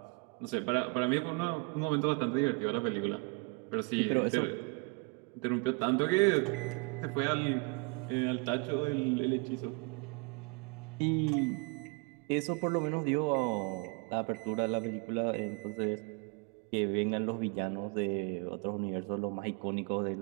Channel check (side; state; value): left; quieter; 31.2 dB